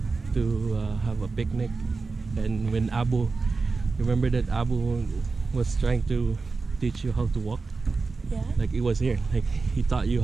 have a picnic. And when remember that Abu was trying to teach you how to walk? Yeah. Like it was here. Like he taught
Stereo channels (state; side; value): quieter; left; 4.1 dB